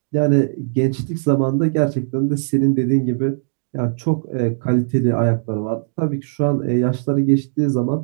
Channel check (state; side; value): silent; left; digital silence